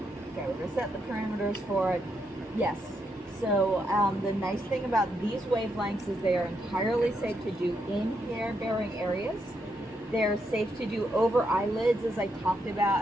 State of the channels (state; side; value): normal; both; correlation 0.79